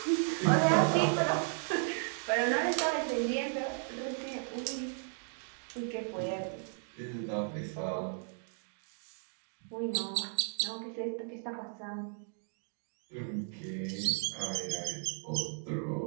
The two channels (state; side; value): silent; left; 54 dB below the other